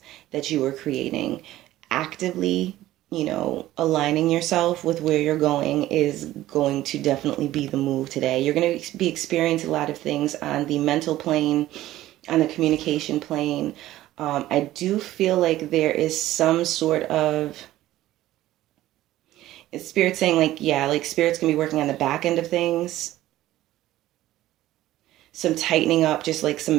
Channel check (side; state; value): left; quieter; 15.0 dB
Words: that you were creating. Actively, aligning yourself with where you're going is going to definitely be the move today. You're going to be experiencing a lot of things on the mental plane, on the communication plane. I do feel like there is some sort of Spirit saying Spirit's going to be working on the back end of things. Some tightening up, just like some